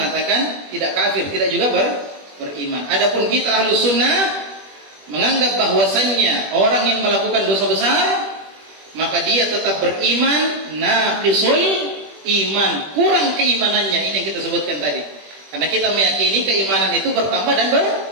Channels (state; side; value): late; left; 21 ms